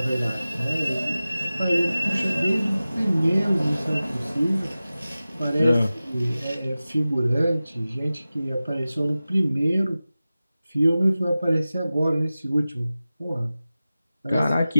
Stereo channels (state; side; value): inverted; both; correlation -0.96